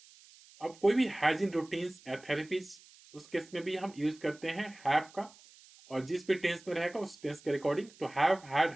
अब कोई भी हाइजीन रूटीन्स या थेरेपीज, उस केस में भी हम यूज करते हैं हैव का, और जिस भी टेंस में रहेगा उस टेंस के अकॉर्डिंग तो हैव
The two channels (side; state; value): right; noise; hiss, 24 dB below the sound